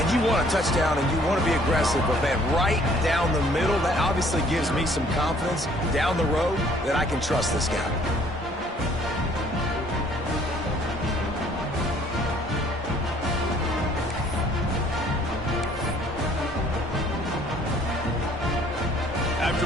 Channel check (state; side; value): normal; both; correlation 0.59